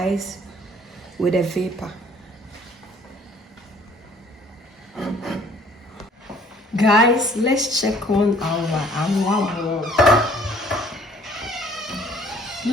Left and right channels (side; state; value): both; normal; correlation 0.57